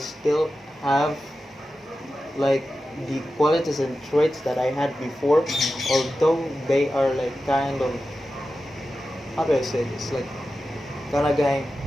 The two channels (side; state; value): both; normal; correlation 0.92